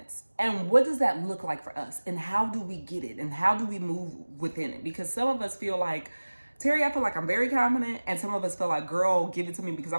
and what does that look like for us, and how do we get it, and how do we move within it? Because some of us feel like, Terry, I feel like I'm very confident, and some of us feel like, girl, give it to me because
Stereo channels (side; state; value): both; inverted; correlation -1.00